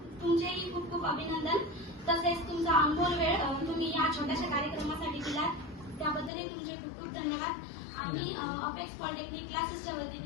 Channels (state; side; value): drops out; right; at 6.3 s